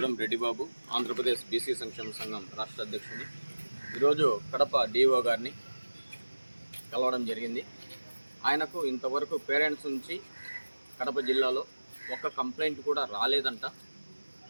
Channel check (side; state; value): both; inverted; correlation -1.00